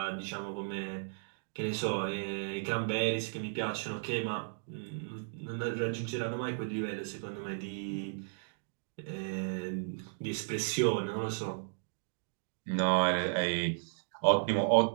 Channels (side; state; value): left; silent; digital silence